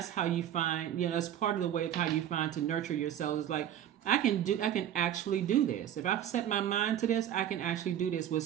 how you find, that's part of the way of how you find to nurture yourself. Is like, I can actually do this. If I set my mind to this, I can actually do this. With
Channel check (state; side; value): quieter; left; 10.7 dB